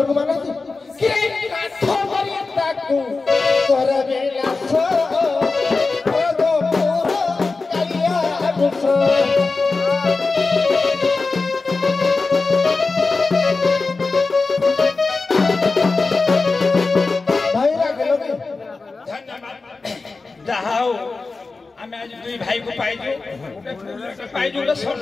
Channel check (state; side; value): quieter; right; 3.9 dB